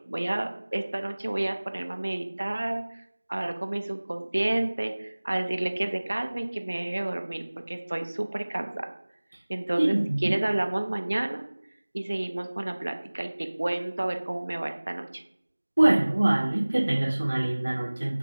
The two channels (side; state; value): both; inverted; correlation -1.00